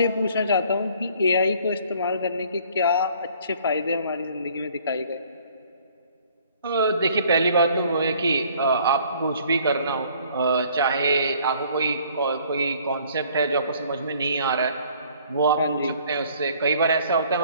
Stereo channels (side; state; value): both; inverted; correlation -0.58